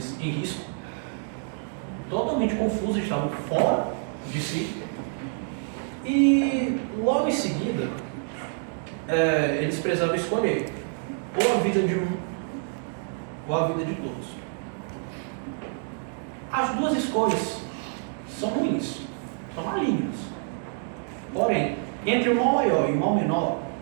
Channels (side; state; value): left; silent; 60 dB below the other